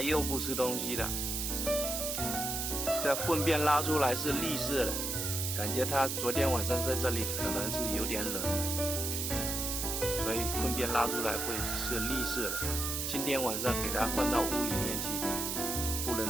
又不吃东西了，这粪便拉出来是绿色的，感觉它昨天晚上在这里可能是有点冷，所以粪便拉出来会是绿色的。今天晚上给它放到屋里面去，不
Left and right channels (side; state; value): right; noise; hiss, 1 dB below the sound